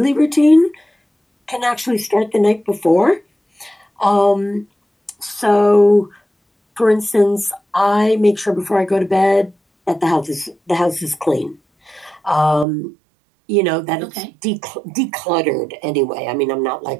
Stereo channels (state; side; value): drops out; left; at 12.7 s